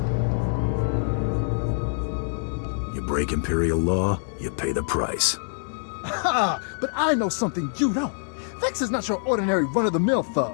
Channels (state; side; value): silent; right; digital silence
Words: You break Imperial law, you pay the price. Ha! But I know something you don't. Vex is not your ordinary run-of-the-mill